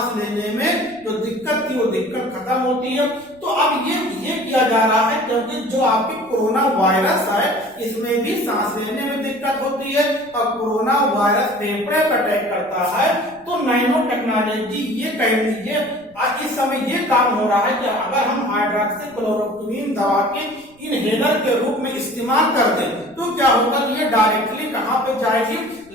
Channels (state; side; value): noise; right; rumble, 29 dB below the sound